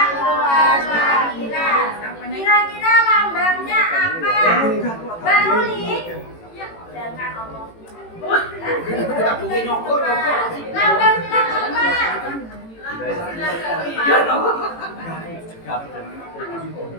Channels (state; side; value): late; right; 18 ms